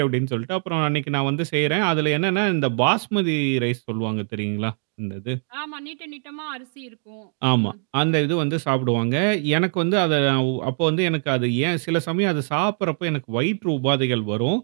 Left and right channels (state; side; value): silent; left; 64 dB below the other